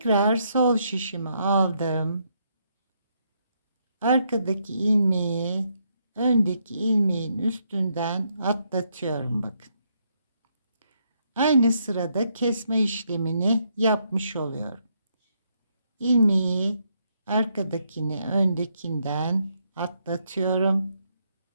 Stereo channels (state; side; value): inverted; both; correlation -0.76